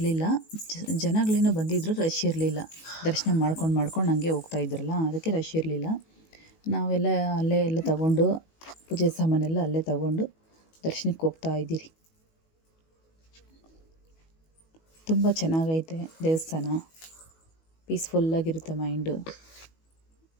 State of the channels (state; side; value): late; right; 19 ms